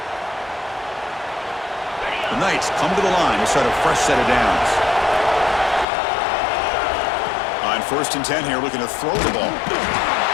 The Knights come to the line to start a fresh set of downs. On 1st and 10 here, looking to throw the ball.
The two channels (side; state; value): right; drops out; at 5.9 s